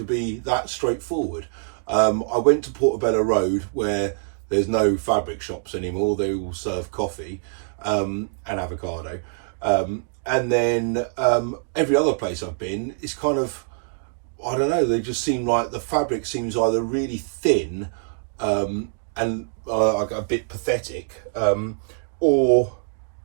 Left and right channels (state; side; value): silent; left; digital silence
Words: be that straightforward. I went to Portobello Road, where there's no fabric shops anymore. They all serve coffee and avocado. And then every other place I've been is kind of, I don't know, they just seem like the fabric seems either really thin and a bit pathetic, or